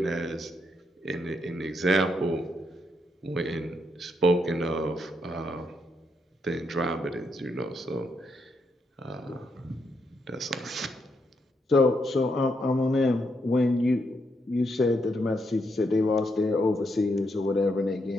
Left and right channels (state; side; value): normal; both; correlation 0.79